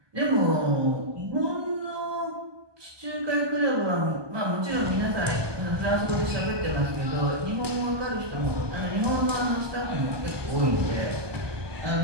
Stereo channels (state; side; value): late; left; 1.2 ms